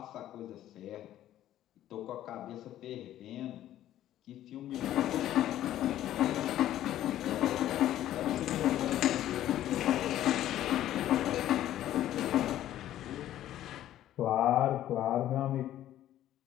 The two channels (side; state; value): right; quieter; 12.7 dB